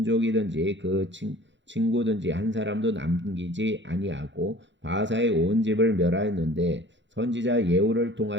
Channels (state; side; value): late; left; 0.53 ms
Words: 그 친구든지 한 사람도 남기지 아니하고 바하사의 온 집을 멸하였는데 선지자 예후를